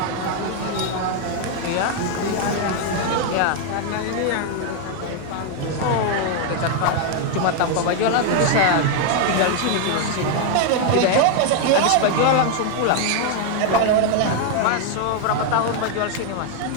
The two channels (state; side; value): different; both; correlation 0.00